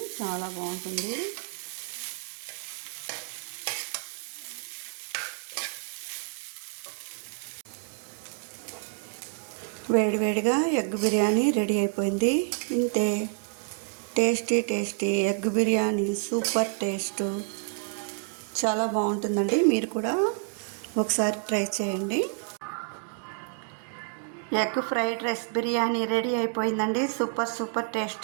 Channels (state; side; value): silent; left; 59 dB below the other